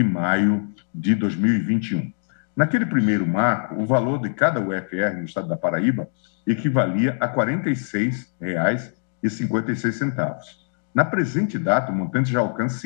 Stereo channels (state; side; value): silent; right; digital silence